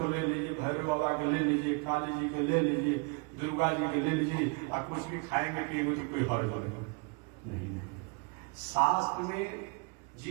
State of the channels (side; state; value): left; quieter; 32.7 dB